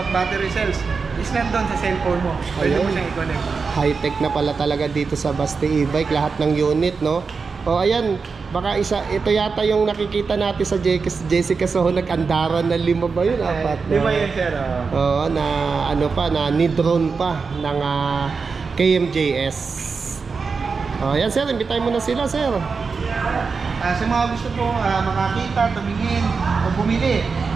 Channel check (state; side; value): quieter; left; 4.9 dB